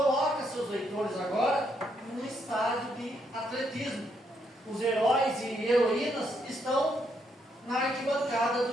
seus leitores agora num estágio de atletismo. Os heróis e heroínas estão na arquibancada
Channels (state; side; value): normal; both; correlation 0.75